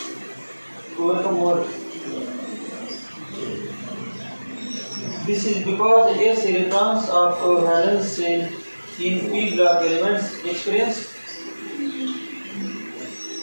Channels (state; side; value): inverted; both; correlation -1.00